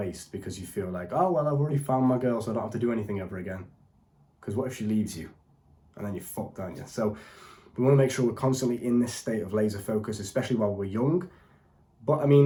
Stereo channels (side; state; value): both; identical; correlation 1.00